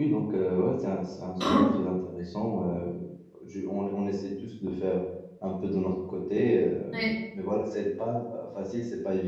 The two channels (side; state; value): both; identical; correlation 1.00